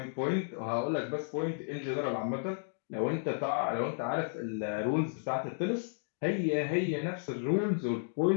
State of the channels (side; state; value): right; silent; digital silence